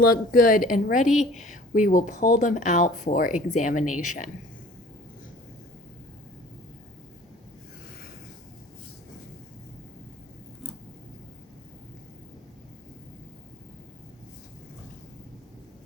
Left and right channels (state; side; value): normal; both; correlation 0.47